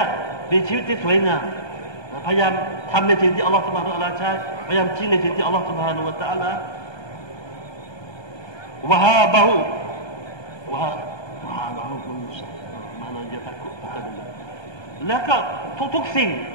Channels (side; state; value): right; late; 1.2 ms